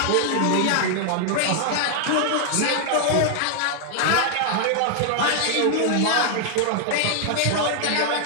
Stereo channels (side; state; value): both; different; correlation 0.00